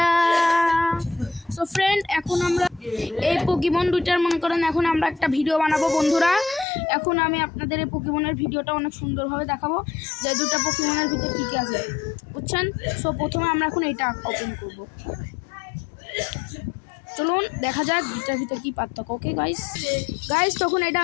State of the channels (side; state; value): right; drops out; at 6.7 s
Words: So friend, এখন আমরা এই পোকেমন দুইটার মনে করেন এখন আমরা একটা ভিডিও বানাবো বন্ধুরা। এখন আমি আপনাদের এই পোকেমনের ভিডিওটা অনেক সুন্দরভাবে দেখাবো যে দুটো পোকেমনের ভিতরে কী কী আছে, বুঝছেন? সো প্রথমে আমরা এখন এইটা ওপেন করব। চলুন দেখা যাক দুটার ভিতরে কী পার্থক্য। ওকে গাইস, তখন এটা